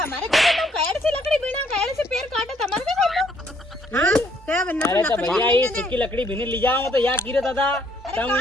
घर तुम कैड से लकड़ी बिना कैड से पेड़ काटे तुम्हारे को हम। हाँ क्या बनना अरे तो भैया ये सूखी लकड़ी भी नहीं ले जाओ तो या कीरे दादा अरे कहां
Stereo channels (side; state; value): both; normal; correlation 0.67